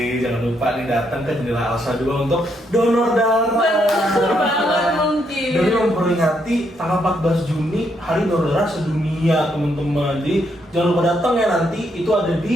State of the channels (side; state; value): both; normal; correlation 0.76